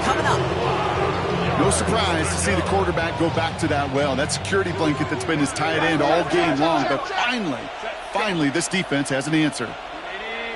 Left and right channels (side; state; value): both; identical; correlation 1.00